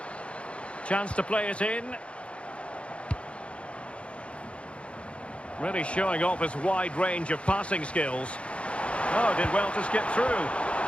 Chance to play it in. Really showing off his wide range of passing skills. Oh, did well to skip through.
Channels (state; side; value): late; right; 0.060 ms